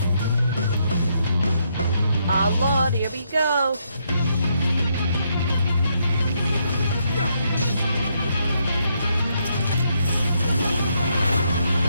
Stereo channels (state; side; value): inverted; both; correlation -0.76